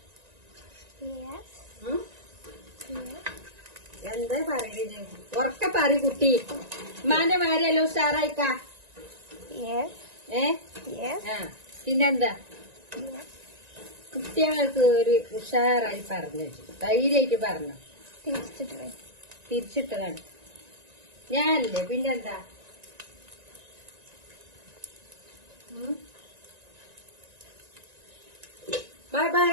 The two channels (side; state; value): left; late; 1.9 ms